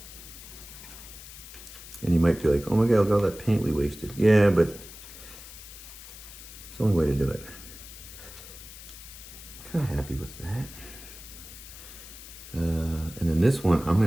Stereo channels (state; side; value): noise; left; hiss, 15 dB below the sound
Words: and you might be like, oh my God, look at all that paint we wasted. Yeah, but it's the only way to do it. I'm kind of happy with that. And then this one, I'm